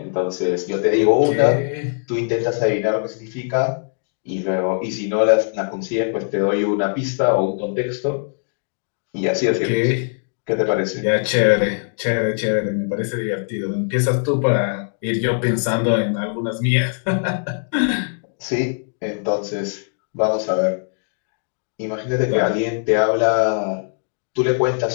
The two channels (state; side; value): silent; right; digital silence